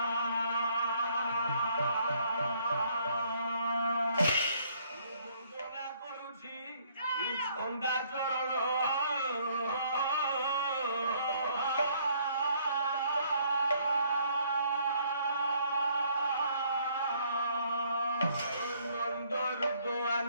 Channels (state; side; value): inverted; both; correlation -0.64